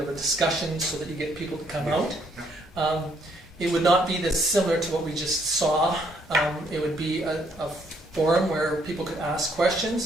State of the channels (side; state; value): both; normal; correlation 0.69